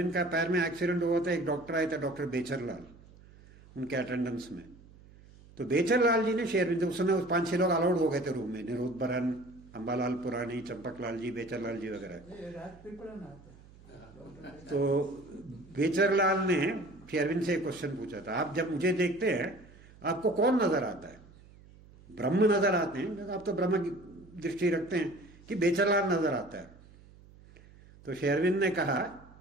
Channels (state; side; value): noise; right; hum, 23 dB below the sound